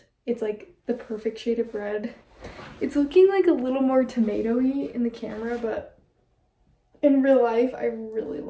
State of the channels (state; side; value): identical; both; correlation 1.00